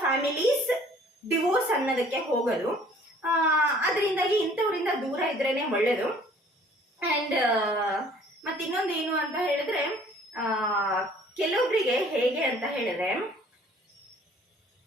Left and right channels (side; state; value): both; normal; correlation 0.55